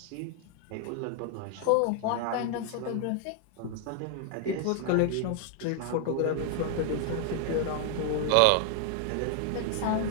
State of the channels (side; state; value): both; different; correlation 0.00